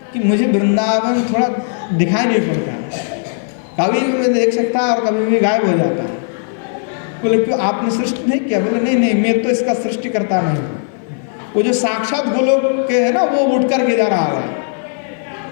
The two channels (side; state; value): right; silent; 57 dB below the other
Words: कि मुझे वृंदावन थोड़ा दिखाई नहीं पड़ता है, कभी भी मैं देख सकता है और कभी भी गायब हो जाता है। बोले क्यों, आपने सृष्टि नहीं किया। बोले नहीं नहीं, मैं तो इसका सृष्टि करता नहीं हूँ। वो जो साक्षात गोलोक के है ना, वो उठ कर के जा रहा है,